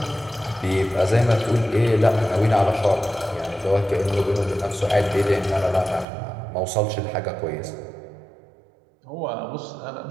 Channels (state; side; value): drops out; left; at 6.1 s